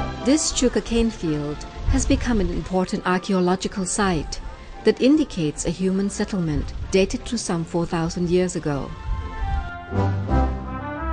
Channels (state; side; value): identical; both; correlation 1.00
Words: This sugarcane field has become an important archaeological site that indicates a human settlement dated to some 4,000 years ago.